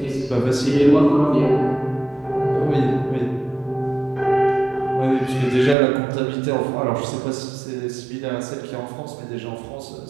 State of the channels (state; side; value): drops out; left; at 5.8 s